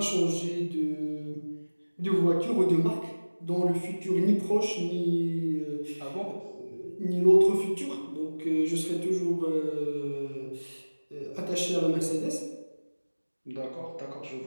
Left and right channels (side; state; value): both; inverted; correlation -1.00